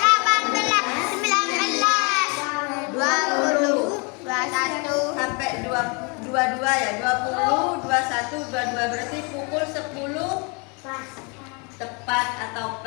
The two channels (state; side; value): quieter; right; 32.3 dB